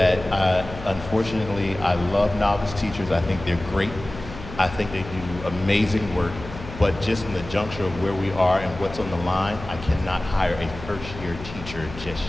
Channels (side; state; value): left; noise; hum, 12 dB below the sound